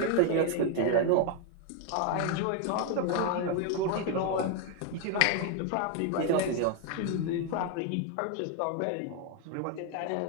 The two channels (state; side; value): different; both; correlation 0.01